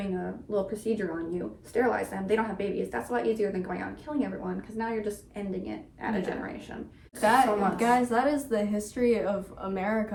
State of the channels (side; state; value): both; identical; correlation 1.00